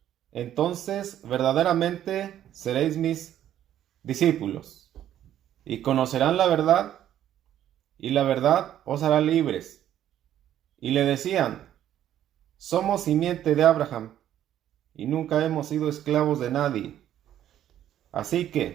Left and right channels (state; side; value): quieter; left; 11.3 dB